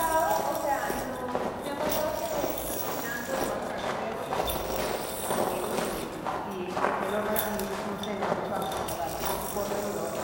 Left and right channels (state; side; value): identical; both; correlation 1.00